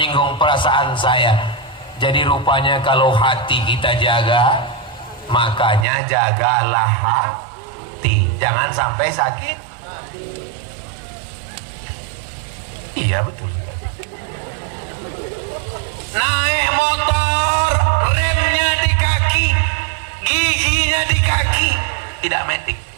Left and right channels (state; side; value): drops out; left; at 5.9 s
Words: perasaan saya. Jadi rupanya kalau hati kita jaga, makanya jagalah hati, jangan sampai sakit. Iya betul. Naik motor, remnya di kaki, giginya di kaki, tidak metik.